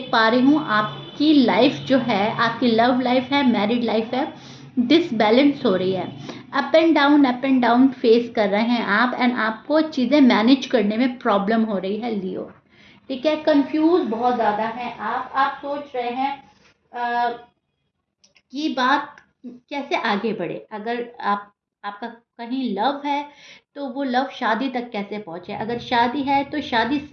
पा रही हूँ आपकी लाइफ जो है, आपकी लव लाइफ है, मैरिड लाइफ है, डिसबैलेंस हो रही है। अप एंड डाउन फेस कर रहे हैं आप एंड आपको चीज़ें मैनेज करने में प्रॉब्लम हो रही है लियो। ठीक है, कंफ्यूज बहुत ज़्यादा है आप सोच रहे हैं कि बात कैसे आगे बढ़े। अगर आपका कहीं लव है तो वो लव शादी तक कैसे पहुंचे, अगर शादी है तो शादी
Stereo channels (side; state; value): both; identical; correlation 1.00